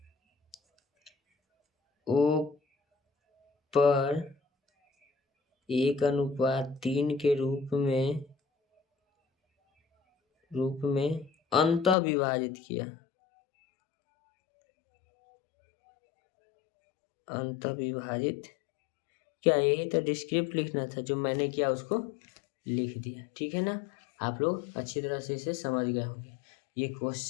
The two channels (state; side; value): drops out; right; at 12.0 s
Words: O पर 1:3 के रूप में अंतः विभाजित किया। क्या यही तो डिस्क्रिप्ट लिखना था, जो मैंने किया उसको लिख दिया। ठीक है ना। आप लोग अच्छी तरह से इसे समझ गए होंगे। ये